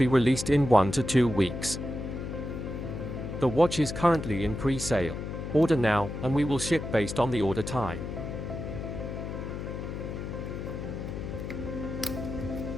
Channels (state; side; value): noise; left; hum, 6 dB below the sound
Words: released in 1 to 2 weeks. The watch is currently in pre-sale. Order now, and we will ship based on the order time.